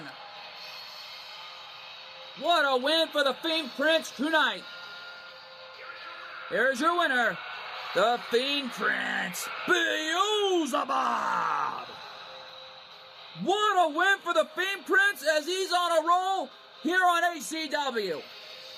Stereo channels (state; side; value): identical; both; correlation 1.00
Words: What a win for the Fiend Prince tonight. Here's your winner, the Fiend Prince, Beelzebub. What a win for the Fiend Prince as he's on a roll here on ACW.